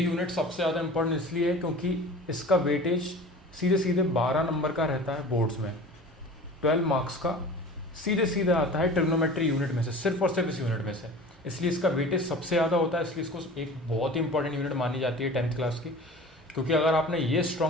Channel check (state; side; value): normal; both; correlation 0.39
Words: सबसे ज़्यादा इम्पोर्टेंट इसलिए है क्योंकि इसका वेटेज सीधे सीधे 12 नंबर का रहता है बोर्ड्स में। 12 मार्क्स का सीधे सीधे आता है ट्रिग्नोमेट्री यूनिट में से, सिर्फ और सिर्फ इस यूनिट में से। इसलिए इसका वेटेज सबसे ज़्यादा होता है, इसलिए इसको एक बहुत ही इंपॉर्टेंट यूनिट मानी जाती है 10th क्लास की। क्योंकि अगर आपने ये